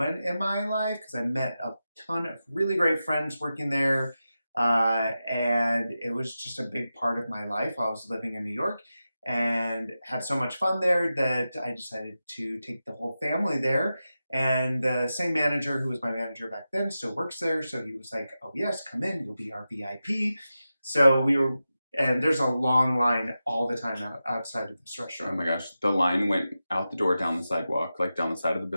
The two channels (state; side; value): inverted; both; correlation -0.92